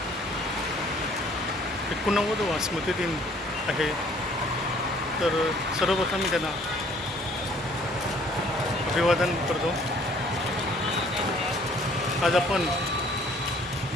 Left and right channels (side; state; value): both; normal; correlation 0.58